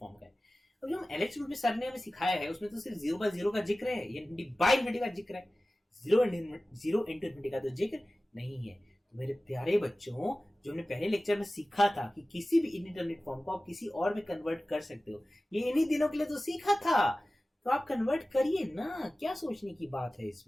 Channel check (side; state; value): both; normal; correlation 0.96